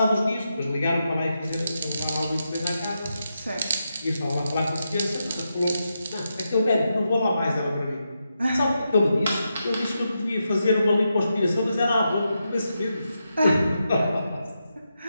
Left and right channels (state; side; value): inverted; both; correlation -0.86